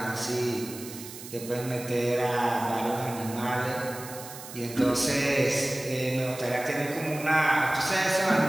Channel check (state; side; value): noise; right; hiss, 13 dB below the sound